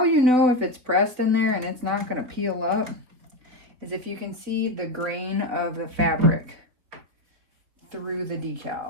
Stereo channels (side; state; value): left; late; 4.4 ms